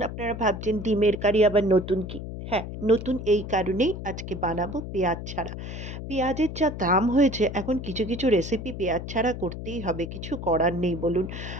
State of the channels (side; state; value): left; noise; hum, 8 dB below the sound